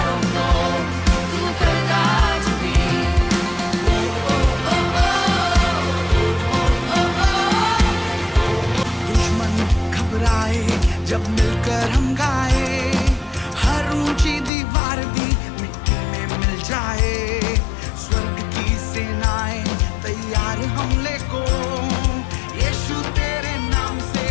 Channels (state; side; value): drops out; right; at 14.5 s